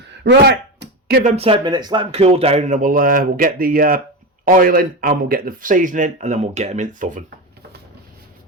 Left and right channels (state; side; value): normal; both; correlation 0.19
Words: Right. Give them 10 minutes, let them cool down, and then we'll get the oil in, and we'll get the seasoning, and then we'll get them in the oven.